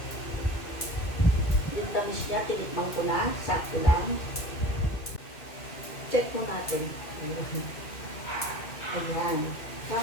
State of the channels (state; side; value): late; right; 2.0 ms